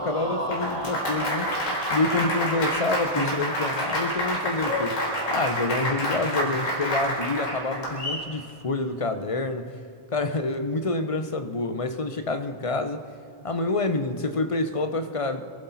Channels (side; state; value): right; late; 1.8 ms